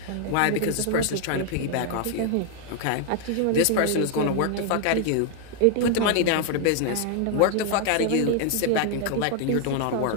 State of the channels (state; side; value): different; both; correlation 0.00